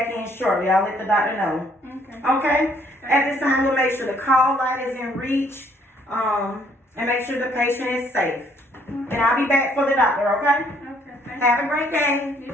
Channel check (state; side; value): normal; both; correlation 0.65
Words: in shortly. I'll let the doctor know. Okay. Okay? At this time, we'll make sure the call light is in reach, and make sure the patient is safe. And I'll be back for the doctor, okay? Okay, thank Have a great day. you.